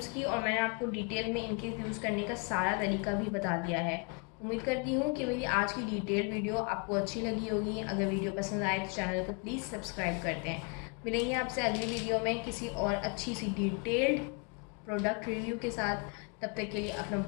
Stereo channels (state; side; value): quieter; right; 34.4 dB